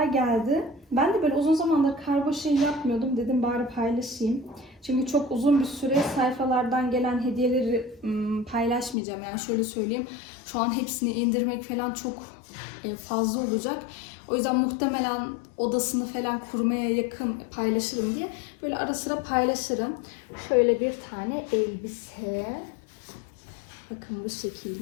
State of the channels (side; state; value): right; drops out; at 9.0 s